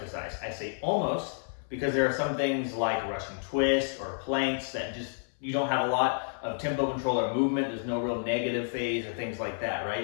I say almost because there are some things like Russian twists or planks that just, you don't have a lot of tempo control or movement. There's no real negative phase or things like that, right?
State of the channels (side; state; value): right; silent; 58 dB below the other